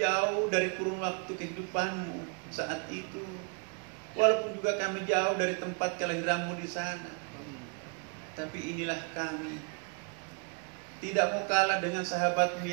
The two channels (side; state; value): left; quieter; 34.8 dB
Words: dari kurun waktu kehidupanmu saat itu, walaupun juga kami jauh dari tempat kelahiranmu di sana, tapi inilah kami. Tidak mau kalah dengan sahabatmu